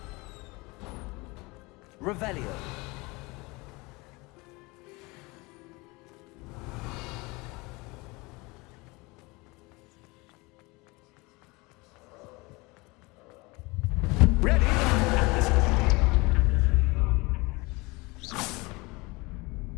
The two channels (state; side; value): quieter; right; 24.7 dB